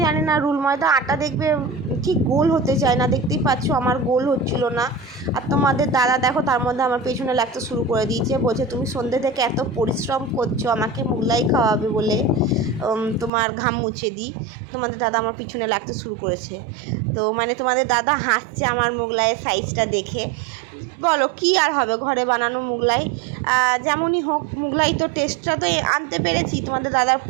জানি না রুল ময়দা আটা দেখবে ঠিক গোল হতে চায় না, দেখতেই পাচ্ছ আমার গোল হচ্ছিল না। আর তোমাদের দাদা দেখো তার মধ্যে আমার পেছনে লাগতে শুরু করে দিয়েছে, বলছে তুমি সন্ধ্যে থেকে এত পরিশ্রম করছো আমাকে মুগলাই খাওয়াবে বলে, তোমার ঘাম মুছে দিই। তোমাদের দাদা আমার পিছনে লাগতে শুরু করেছে। তো মানে তোমাদের দাদা হাসছে আমার মুগলাইয়ের সাইজটা দেখে। বলো কী আর হবে, ঘরে বানানো মুগলাই যেমনই হোক, মুগলাই তো টেস্টটা তো আনতে পেরেছি। তোমাদের দাদার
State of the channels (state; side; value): drops out; left; at 13.3 s